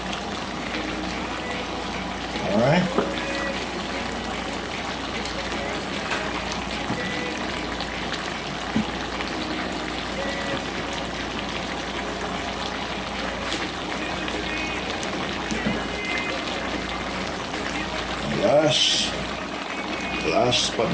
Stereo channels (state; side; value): identical; both; correlation 1.00